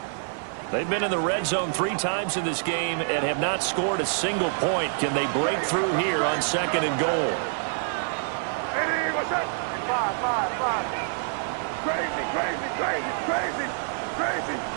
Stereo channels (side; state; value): left; silent; 61 dB below the other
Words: They've been in the red zone 3 times in this game and have not scored a single point. Can they break through here on 2nd and goal? Hey, what's up? Five. Crazy.